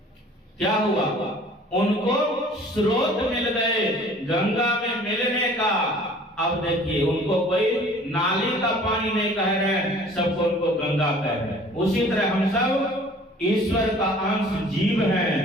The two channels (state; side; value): normal; both; correlation 0.50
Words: क्या हुआ? उनको स्रोत मिल गए गंगा में मिलने का। अब देखिए उनको कोई नाली का पानी नहीं कह रहे, सबको उनको गंगा कह रहे हैं। उसी तरह हम सब ईश्वर का अंश जीव